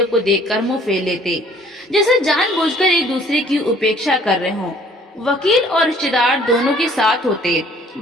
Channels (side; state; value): both; normal; correlation 0.56